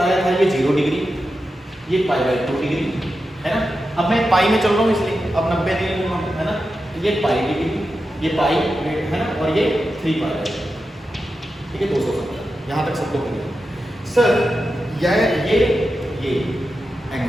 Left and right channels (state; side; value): normal; both; correlation 0.90